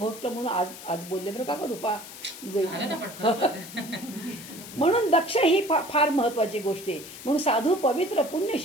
म्हणून आज बोलले बरं का रूपा. म्हणून दक्ष ही फार महत्वाची गोष्ट आहे. म्हणून साधू, पवित्र,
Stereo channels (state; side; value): noise; left; hiss, 14 dB below the sound